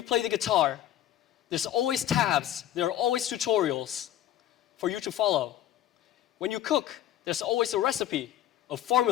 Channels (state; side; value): quieter; right; 11.9 dB